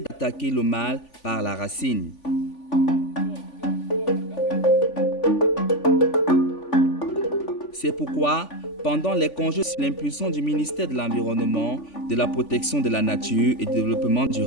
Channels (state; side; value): late; right; 3.5 ms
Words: le mal par la racine. C'est pourquoi, pendant les congés sous l'impulsion du ministère de l'Environnement, de la Protection de la Nature et du Développement